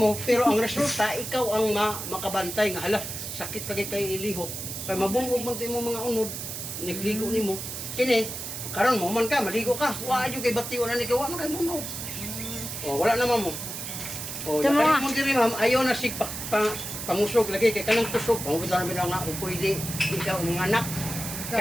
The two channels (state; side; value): noise; right; hiss, 7 dB below the sound